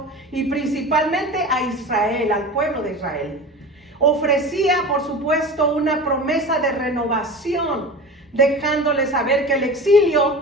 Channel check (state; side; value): normal; both; correlation 0.33